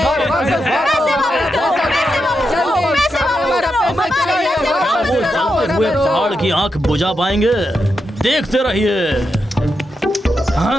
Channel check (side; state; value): both; normal; correlation 0.86